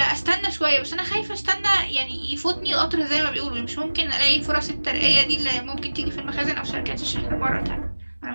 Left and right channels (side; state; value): both; inverted; correlation -1.00